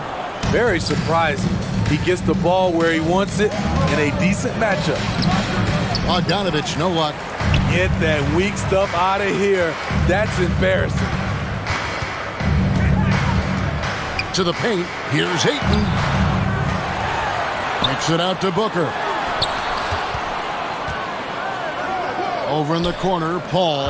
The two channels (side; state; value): both; identical; correlation 1.00